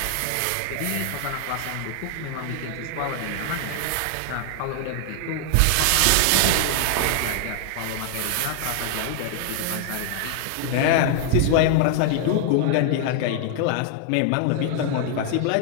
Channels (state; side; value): different; both; correlation 0.00